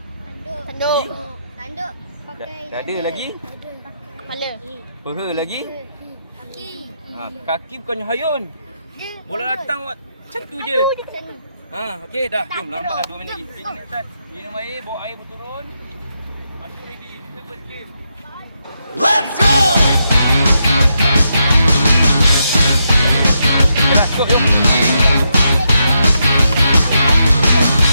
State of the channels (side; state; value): both; inverted; correlation -0.82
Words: Tanduk. Dada lagi? Kepala. Peha lagi? Kaki. Kaki bukannya hayun. Bola datang awak macam tu je. Okey dah. Jom lambat dah 2 minit lagi. Kita naik atas. Minum air, bawa air berturun. Masuk ready. Kita first game. Let's go! Dah cukup jom.